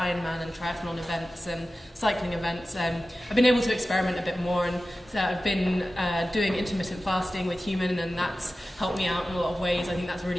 and triathlon events and cycling events, I've been able to experiment a bit more, and so I've been doing intermittent fasting with Human, and that's helped me out in a lot of ways. I think that's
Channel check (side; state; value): both; normal; correlation 0.95